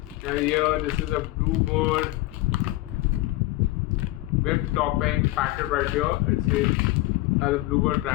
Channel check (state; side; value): quieter; right; 18.6 dB